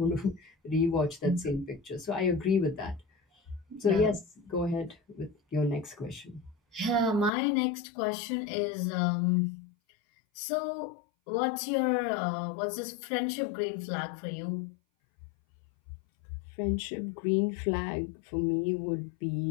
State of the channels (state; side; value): drops out; right; at 7.3 s